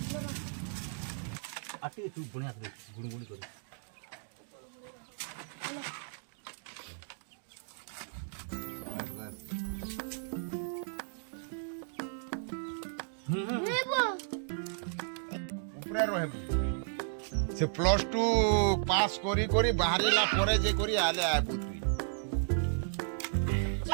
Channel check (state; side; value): silent; left; digital silence